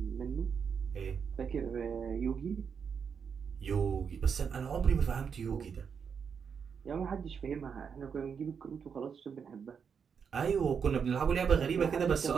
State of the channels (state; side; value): quieter; left; 6.6 dB